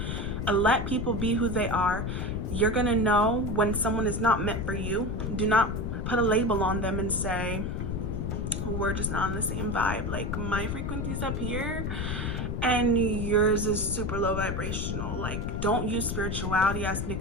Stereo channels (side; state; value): left; noise; rumble, 2 dB below the sound